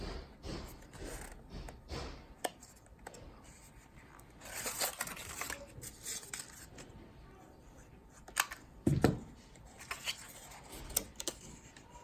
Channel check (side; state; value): both; identical; correlation 1.00